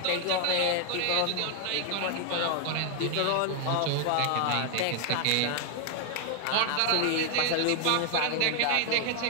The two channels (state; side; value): different; both; correlation 0.00